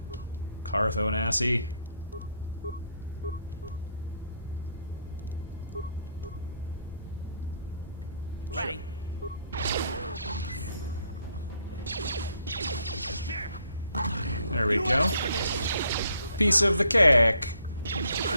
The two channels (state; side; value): inverted; both; correlation -0.69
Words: Carthonassi. Ready? There we go. Piece of the cake.